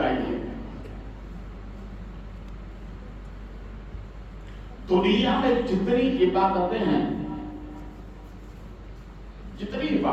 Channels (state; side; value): identical; both; correlation 1.00